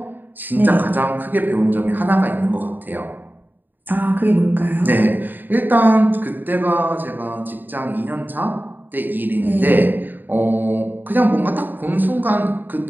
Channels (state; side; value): late; left; 0.091 ms